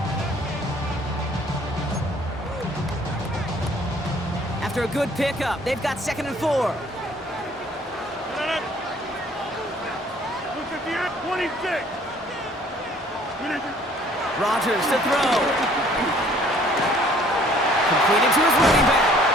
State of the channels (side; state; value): both; normal; correlation 0.57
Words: After a good pickup, they've got 2nd and 4. Rodgers to throw. Completed to his running back.